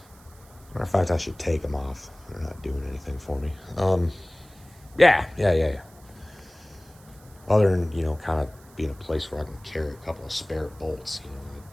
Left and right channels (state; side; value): noise; right; hiss, 26 dB below the sound